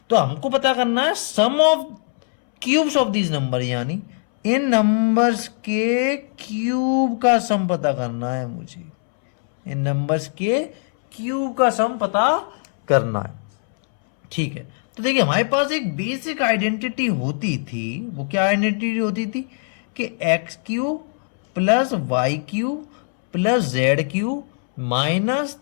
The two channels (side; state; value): right; silent; 65 dB below the other